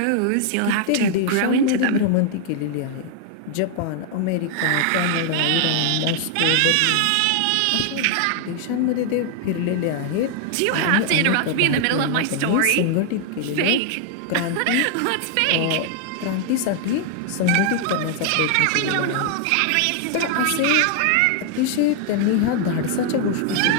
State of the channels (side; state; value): both; different; correlation 0.00